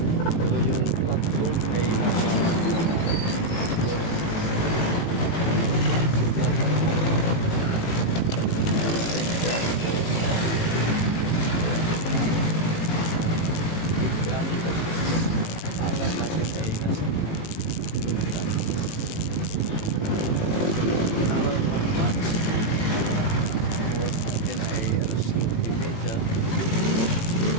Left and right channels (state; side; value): late; right; 18 ms